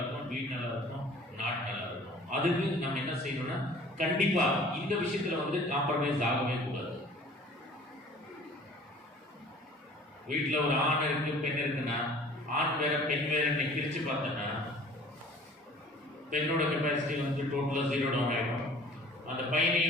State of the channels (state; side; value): normal; both; correlation 0.49